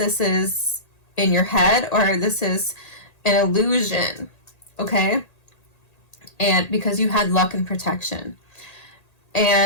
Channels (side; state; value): right; late; 1.8 ms